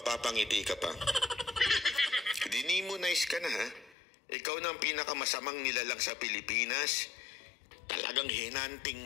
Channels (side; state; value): right; drops out; at 4.0 s